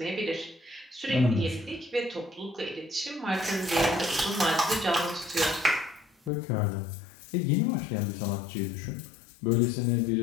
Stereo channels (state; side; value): drops out; right; at 6.3 s